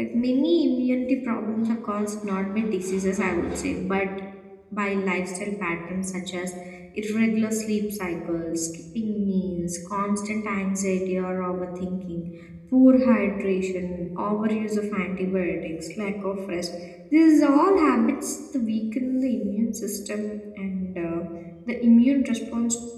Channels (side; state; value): both; identical; correlation 1.00